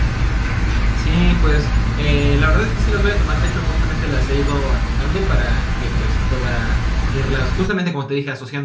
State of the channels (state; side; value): identical; both; correlation 1.00